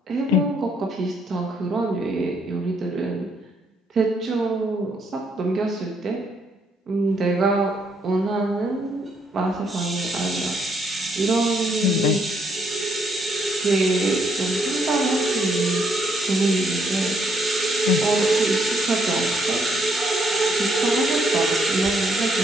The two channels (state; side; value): normal; both; correlation 0.72